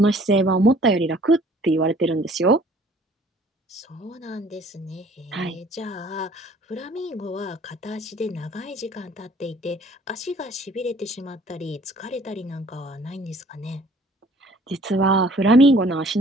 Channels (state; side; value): normal; both; correlation 0.55